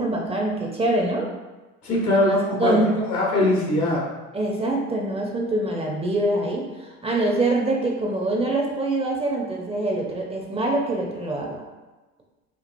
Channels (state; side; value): normal; both; correlation 0.49